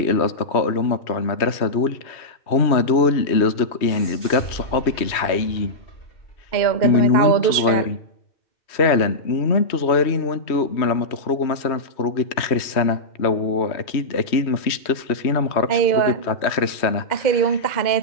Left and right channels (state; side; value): late; right; 3.1 ms